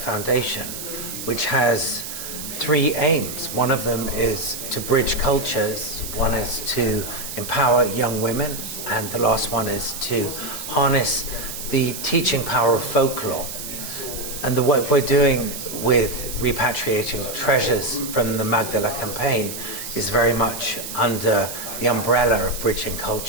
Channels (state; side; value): noise; right; hiss, 8 dB below the sound